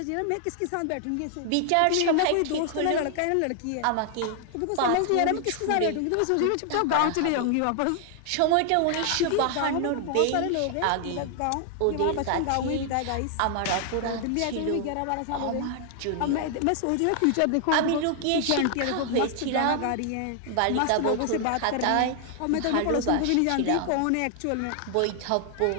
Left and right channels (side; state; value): both; different; correlation 0.00